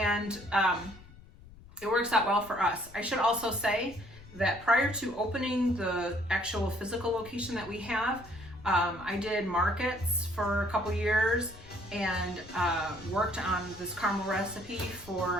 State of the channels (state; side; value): noise; left; rumble, 20 dB below the sound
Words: it works out well for us. I should also say that prior to opening the actual physical location that we have, I did markets for a couple years and worked on this caramel recipe